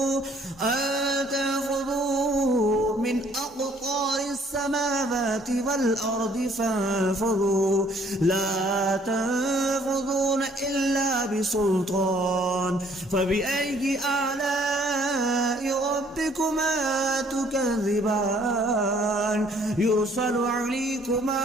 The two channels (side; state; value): both; normal; correlation 0.61